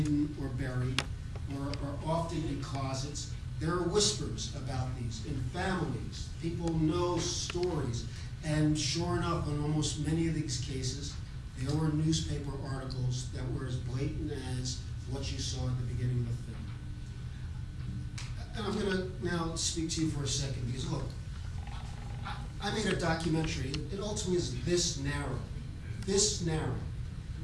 or buried, or often in closets, there are whispers about these in families. People know stories. And sure enough, in almost many of these cases, there were newspaper articles that were as blatant as what you saw at the beginning of the film. And I'm going to now speak to you for a second, because look, I made a documentary. It ultimately is this narrow.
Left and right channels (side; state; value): both; identical; correlation 1.00